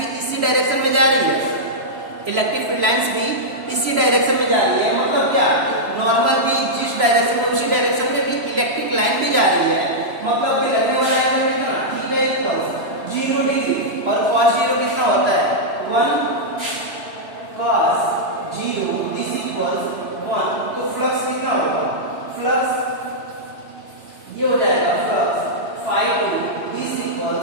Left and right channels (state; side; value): late; left; 3.0 ms